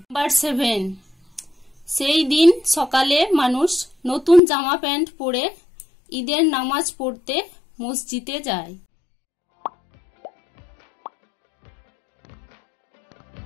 7, সেই দিন সকালে মানুষ নতুন জামা প্যান্ট পরে ঈদের নামাজ পড়তে মসজিদে যায়।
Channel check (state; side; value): drops out; right; at 4.4 s